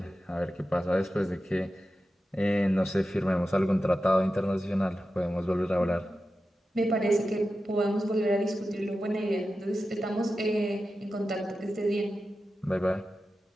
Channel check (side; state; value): both; normal; correlation 0.92